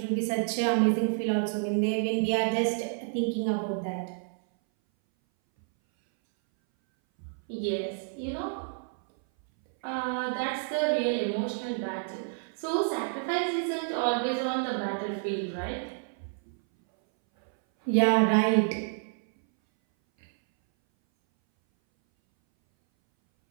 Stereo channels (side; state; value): left; silent; 59 dB below the other